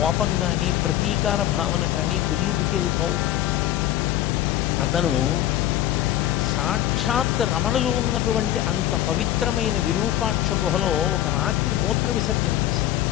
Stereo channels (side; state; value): right; quieter; 13.0 dB